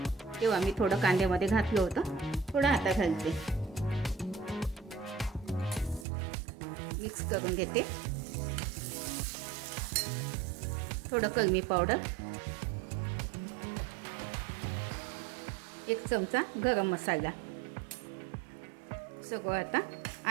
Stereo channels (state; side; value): drops out; left; at 6.1 s